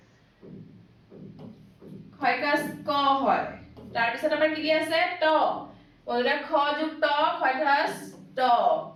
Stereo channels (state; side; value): identical; both; correlation 1.00